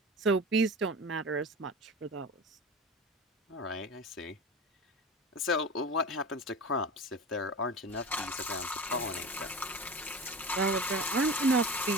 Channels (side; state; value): both; normal; correlation 0.31